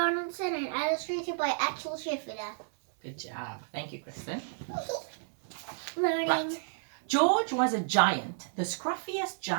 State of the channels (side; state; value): left; silent; 57 dB below the other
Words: and illustrated by Axel Scheffler. Good job. Thank you, Kristen. Learning. Right. George was a giant, the scruffiest